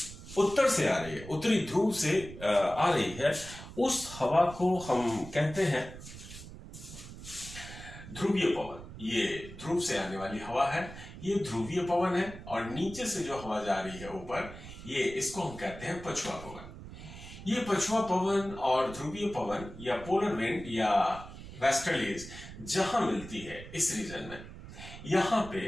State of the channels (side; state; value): right; noise; rumble, 13 dB below the sound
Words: उत्तर से आ रही है, उत्तरी ध्रुव से आ रही है, उस हवा को हम कहते हैं ध्रुवीय पवन। ये ध्रुव से आने वाली हवा है, ये ध्रुवीय पवन है। और नीचे से जो हवा जा रही है ऊपर, ये इसको हम कहते हैं पछुआ पवन। ये पछुआ पवन और ध्रुवीय पवन या पोलर विंड या वेस्टर्लीज जहां मिलती है इस रीजन में, यहां पे